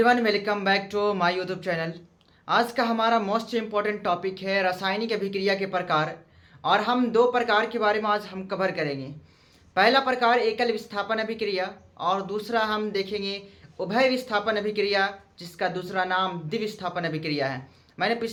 welcome back to my YouTube channel. आज का हमारा मोस्ट इम्पॉर्टेंट टॉपिक है रासायनिक अभिक्रिया के प्रकार। और हम दो प्रकार के बारे में आज हम कवर करेंगे। पहला प्रकार एकल विस्थापन अभिक्रिया और दूसरा हम देखेंगे उभय विस्थापन अभिक्रिया, जिसका दूसरा नाम द्विविस्थापन अभिक्रिया है। मैंने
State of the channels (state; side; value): identical; both; correlation 1.00